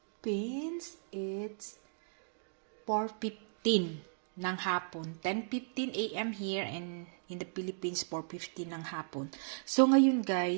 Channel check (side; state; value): left; silent; digital silence